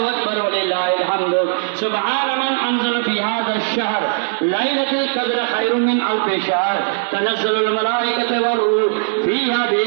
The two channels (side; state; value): left; silent; digital silence